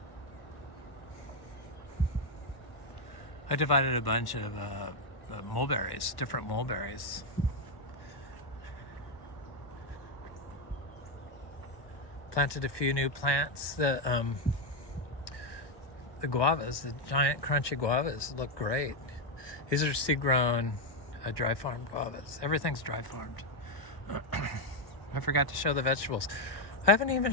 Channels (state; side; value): late; right; 1.2 ms